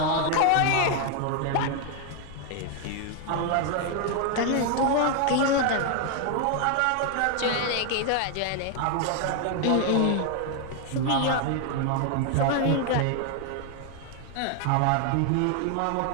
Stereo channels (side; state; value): both; different; correlation 0.00